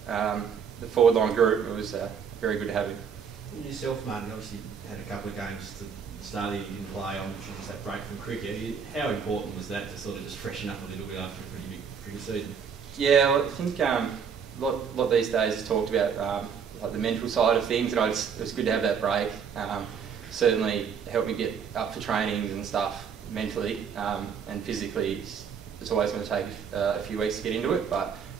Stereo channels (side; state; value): left; quieter; 6.8 dB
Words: forward line group, it was very good to have him. Yourself, mate, you obviously had a couple of games to the start that you didn't play on, which was that break from cricket. How important was that to sort of just freshen up a little bit after a pretty big cricket season? Yeah, well, I think a lot these days is talked about like the mental side of things, and it was good to have that break. Certainly helped me get up for trainings and stuff mentally, and physically it's always going to take a few weeks to get into it, but